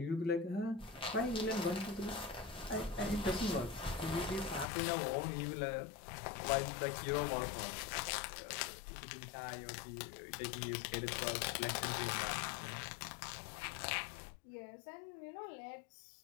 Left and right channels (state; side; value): drops out; right; at 4.7 s